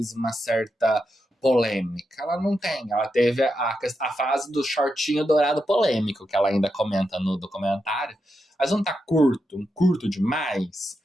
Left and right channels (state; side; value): normal; both; correlation 0.86